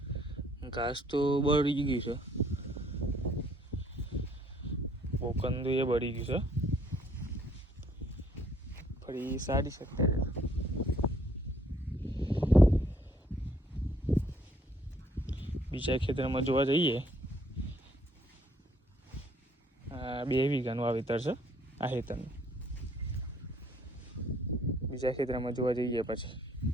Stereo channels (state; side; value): normal; both; correlation 0.64